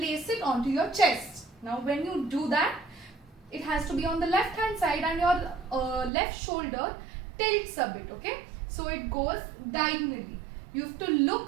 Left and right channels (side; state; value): left; drops out; at 6.1 s